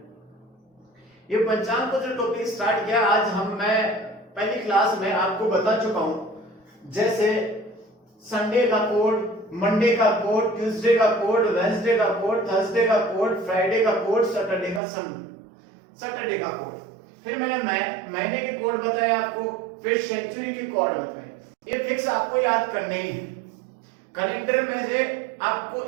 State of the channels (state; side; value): drops out; left; at 14.8 s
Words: ये पंचांग को जो टॉपिक स्टार्ट किया आज मैं पहली क्लास में आपको बता चुका हूं। जैसे संडे का कोड, मंडे का कोड, ट्यूसडे का कोड, वेडनेसडे का कोड, थर्सडे का कोड, फ्राइडे का कोड, सैटरडे का कोड। फिर मैंने महीने के कोड बताए आपको, फिर सेंचुरी के कोड बताए। ये फिक्स आपको याद करने ही है। कैलेंडर में से आपको